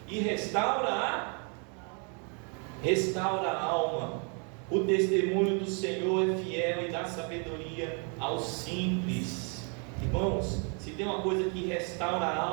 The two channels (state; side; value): quieter; left; 37.9 dB